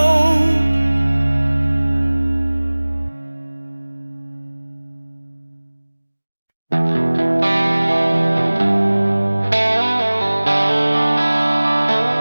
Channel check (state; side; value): inverted; both; correlation -1.00